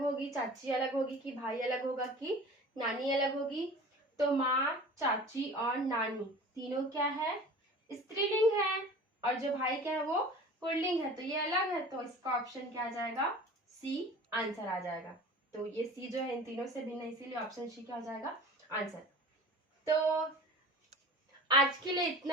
होगी, चाची अलग होगी, कि भाई अलग होगा, कि नानी अलग होगी। तो माँ, चाची और नानी तीनों क्या है, स्त्रीलिंग है, और जो भाई क्या है वो पुल्लिंग है, तो ये अलग है। तो इसका ऑप्शन क्या आ जाएगा, सी आंसर आ जाएगा। तो ये सी जो है इन तीनों से भिन्न है, इसीलिए ऑप्शन सी क्या हो जाएगा, आंसर। तो आज के लिए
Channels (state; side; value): normal; both; correlation 0.40